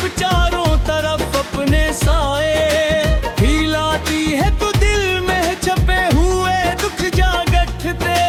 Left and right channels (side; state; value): both; identical; correlation 1.00